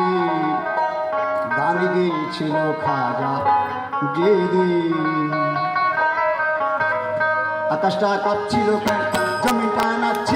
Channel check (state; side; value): identical; both; correlation 1.00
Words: গান গেয়েছিল খাজা যেদিন। আকাশটা কাঁপছিল কেন, জমিনটা